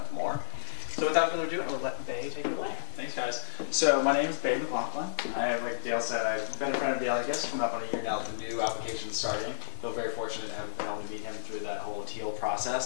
more. So without further ado, I will let Bay take it away. Thanks, guys. So my name is Bay McLaughlin. Like Dale said, I've been a friend of Dale, I guess, coming up on a year now with the new application starting. Feel very fortunate to have been able to meet him through that whole teal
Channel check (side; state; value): right; silent; digital silence